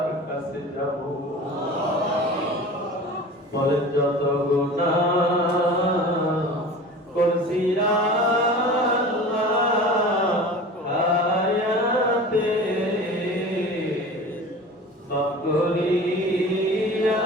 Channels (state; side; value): normal; both; correlation 0.37